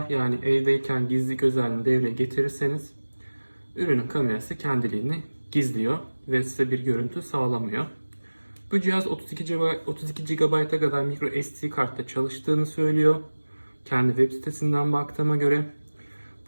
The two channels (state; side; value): inverted; both; correlation -1.00